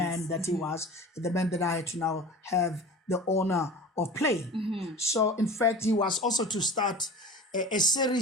that he was, the man that I had to now have the honor of playing. So, in fact, he was also to start a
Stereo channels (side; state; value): both; normal; correlation 0.37